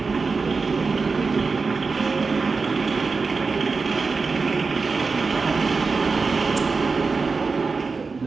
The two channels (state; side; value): quieter; left; 4.4 dB